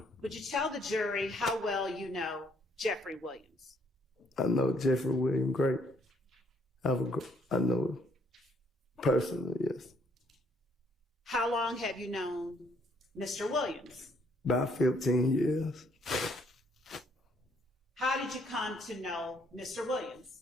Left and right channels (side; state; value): both; normal; correlation 0.67